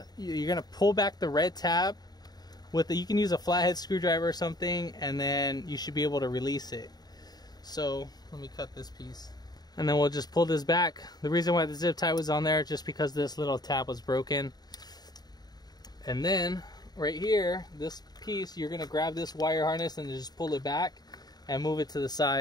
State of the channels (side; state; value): right; late; 0.19 ms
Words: You're gonna pull back the red tab with you can use a flathead screwdriver or something, and then you should be able to release it. So let me cut this piece, and then we'll just pull this back. The reason why the zip tie was on there, just because this little tab was broken. And then right here, this piece, you're gonna grab this wire harness and just pull it back and move it to the